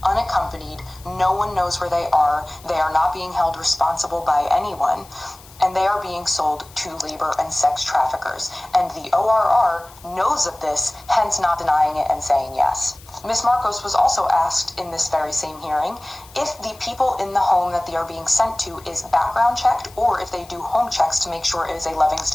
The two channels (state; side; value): noise; left; hiss, 23 dB below the sound